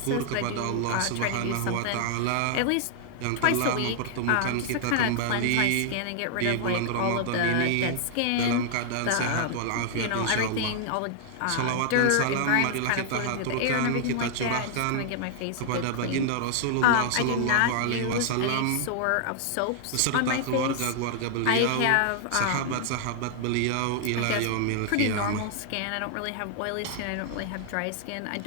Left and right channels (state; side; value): different; both; correlation 0.00